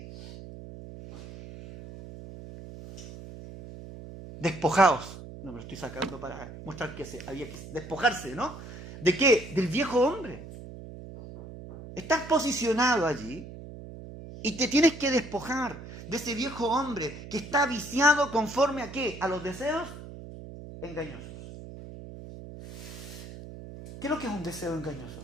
despojaos. No me lo estoy sacando para mostrar que había que despojarse, ¿no? ¿De qué? Del viejo hombre. Estás posicionado allí y te tienes que despojar de ese viejo hombre que está viciado conforme a ¿qué? A los deseos engañosos. ¿Qué es lo que es un deseo engañoso?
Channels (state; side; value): noise; right; hum, 13 dB below the sound